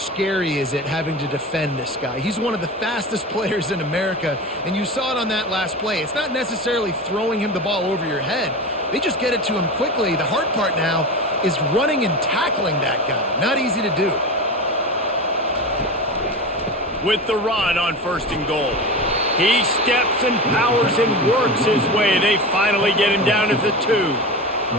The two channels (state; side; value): normal; both; correlation 0.27